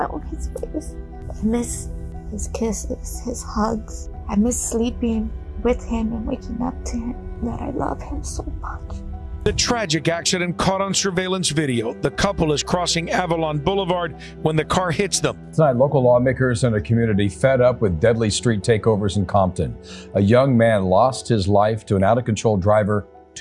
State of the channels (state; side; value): identical; both; correlation 1.00